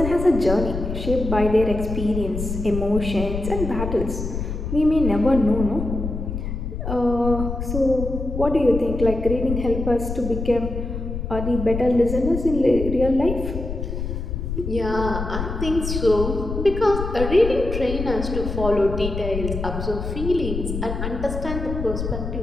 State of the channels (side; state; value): left; noise; rumble, 5 dB below the sound